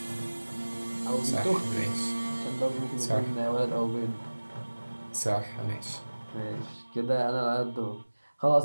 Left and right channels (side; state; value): both; inverted; correlation -1.00